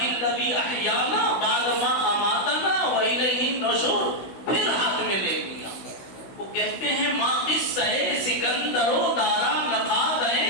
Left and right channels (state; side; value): late; right; 16 ms